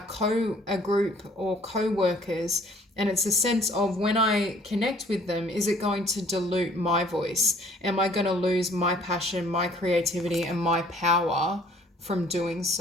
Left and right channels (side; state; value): both; normal; correlation 0.57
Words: group or co-workers. And it's a sense of, when I connect with them, is it going to dilute my voice? Am I going to lose my passion, my creativity, and my power from doing